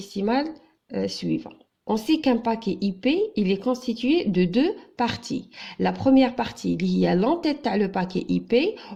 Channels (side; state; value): both; identical; correlation 1.00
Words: suivant. On sait qu'un paquet IP, il est constitué de 2 parties. La première partie, il y a l'entête à le paquet IP.